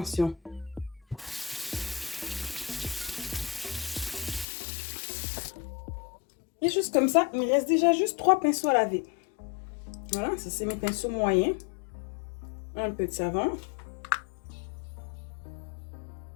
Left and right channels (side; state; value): right; drops out; at 4.5 s